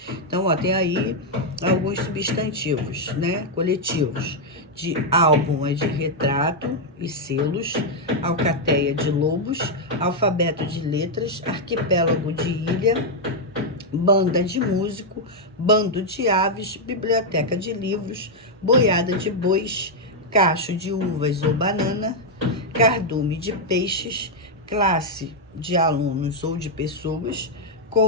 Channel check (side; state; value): both; normal; correlation -0.02